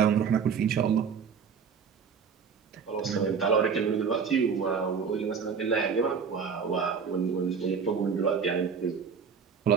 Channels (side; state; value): left; quieter; 6.2 dB